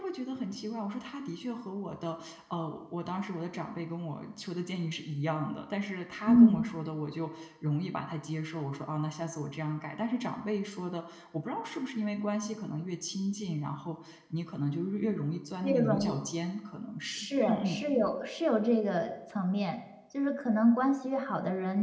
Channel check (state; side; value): identical; both; correlation 1.00